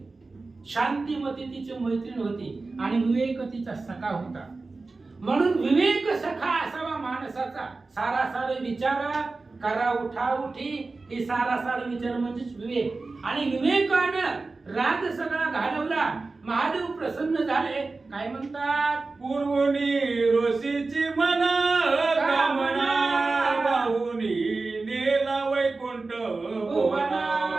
शांतिमती तिची मैत्रीण होती आणि विवेक तिचा सखा होता. म्हणून विवेक सखा असावा माणसाचा. सारासार विचार करा उठा उठी ही सारासार विचार म्हणजेच विवेक. आणि विवेकानं राग सगळा घालवला. महादेव प्रसन्न झाले. काय म्हणतात? पूर्वनी ऋषीची मना कामना वाहुनी नेला वैकुंठ भुवना.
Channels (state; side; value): quieter; left; 3.7 dB